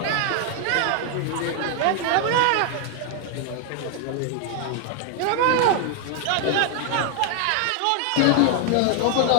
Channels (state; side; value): different; both; correlation 0.00